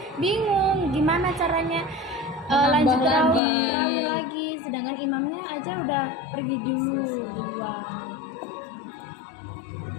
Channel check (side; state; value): right; drops out; at 3.4 s